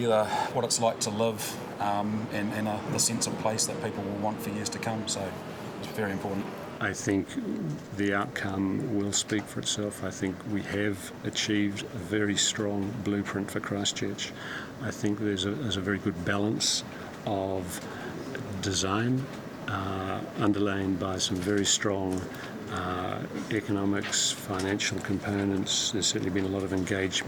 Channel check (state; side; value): identical; both; correlation 1.00